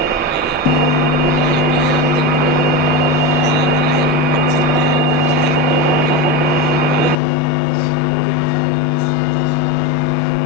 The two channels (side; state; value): right; drops out; at 7.2 s